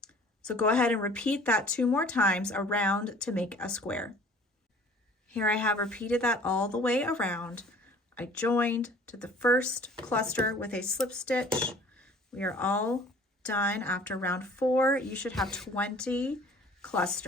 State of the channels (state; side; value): normal; both; correlation 0.50